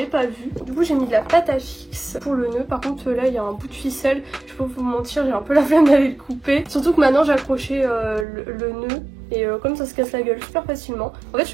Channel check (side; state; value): left; drops out; at 8.2 s